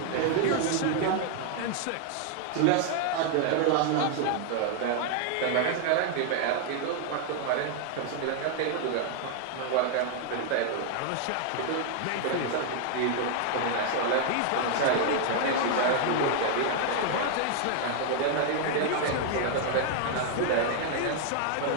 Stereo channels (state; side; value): different; both; correlation 0.00